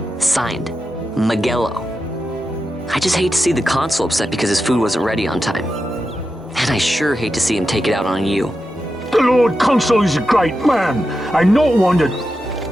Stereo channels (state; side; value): normal; both; correlation 0.89